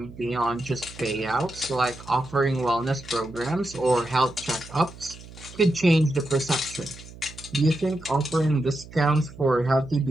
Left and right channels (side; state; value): right; noise; hum, 17 dB below the sound